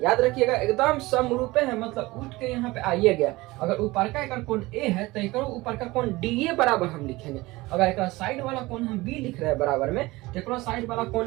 रखिएगा एकदम समरूप है, मतलब उठ के यहाँ पे आइए गया। अगर ऊपर का एक कोण ए है तो एक ऊपर का कोण डी ए बराबर हम लिखेंगे। अगर एक साइड वाला कोण हम बी लिख रहे हैं बराबर में, तो एक साइड वाला कोण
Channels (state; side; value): quieter; left; 20.6 dB